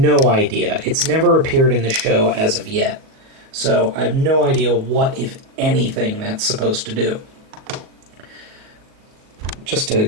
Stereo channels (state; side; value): late; left; 38 ms